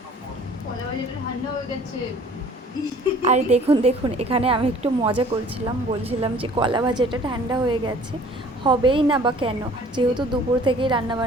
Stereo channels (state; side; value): normal; both; correlation 0.51